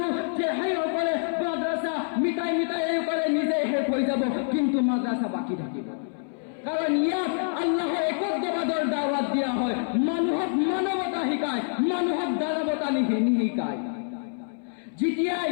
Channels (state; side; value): silent; right; 61 dB below the other